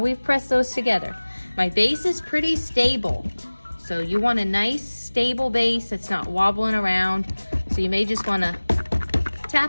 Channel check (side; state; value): both; inverted; correlation -1.00